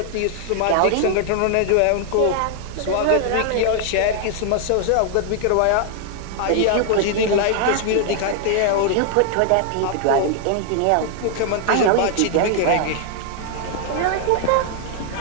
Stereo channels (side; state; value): both; different; correlation 0.00